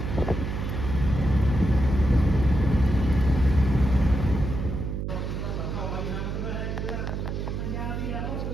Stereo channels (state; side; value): noise; right; hum, 3 dB below the sound